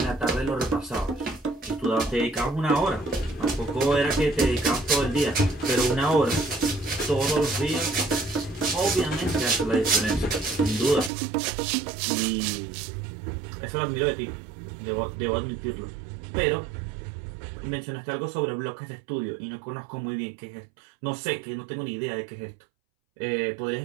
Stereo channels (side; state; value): left; drops out; at 11.1 s